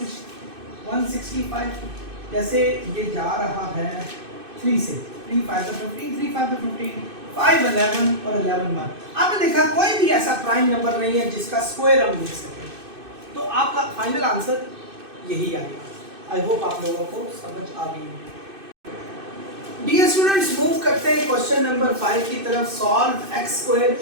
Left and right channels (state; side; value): late; left; 2.6 ms